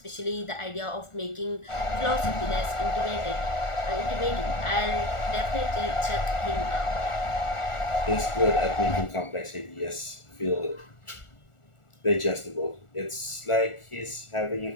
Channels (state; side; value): late; right; 1.4 ms